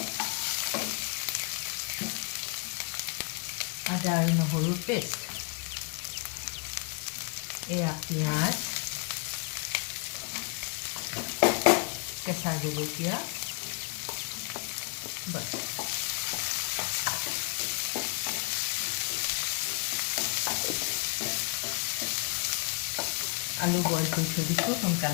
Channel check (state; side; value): quieter; right; 34.4 dB